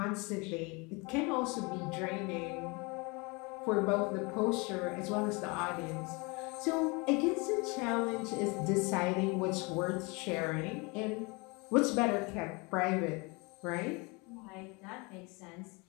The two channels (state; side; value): quieter; right; 28.4 dB